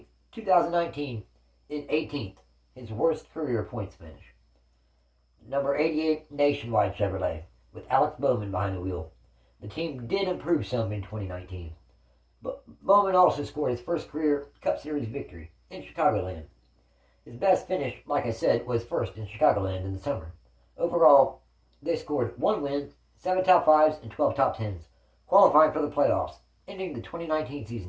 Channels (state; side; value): identical; both; correlation 1.00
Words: 2019 in 18th, his worst career points finish. Number 88 Nationwide Chevrolet, with Alexbowman behind the wheel. The team did improve some in 2019, but Bowman also scored his first career Cup Series victory in Chicagoland. His best finish, like I said, was first in Chicagoland in the summer. Overall, they scored 1 win, 7 top 5s, and 12 top 10s, qualifying for the playoffs, ending the 2019